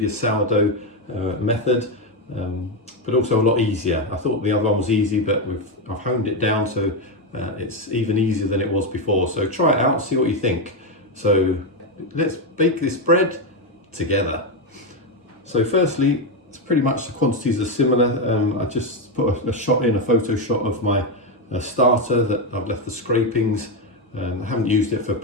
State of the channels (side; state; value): both; normal; correlation 0.07